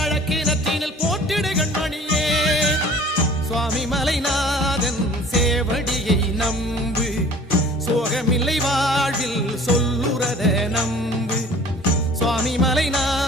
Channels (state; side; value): normal; both; correlation 0.48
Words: போட்டிடு கண்மணியே சுவாமி மலைநாதன் சேவடியை நம்பு சோகமில்லை வாழ்வில் சொல்லுறத நம்பு சுவாமி